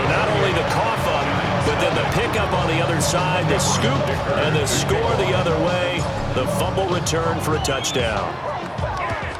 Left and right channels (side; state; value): both; identical; correlation 1.00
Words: not only the cough up, but then the pickup on the other side, the scoop, and the score the other way. The fumble return for a touchdown.